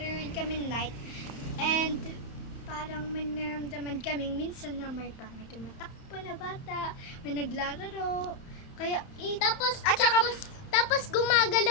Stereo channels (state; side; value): late; right; 31 ms